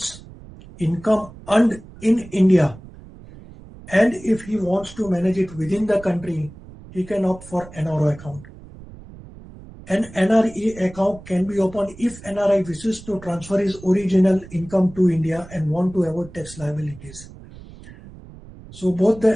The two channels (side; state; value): right; noise; rumble, 18 dB below the sound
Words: income earned in India, and if he wants to manage it within the country, he can opt for NRO account. An NRE account can be opened if NRI wishes to transfer his original income to India and want to avoid tax liabilities. So both the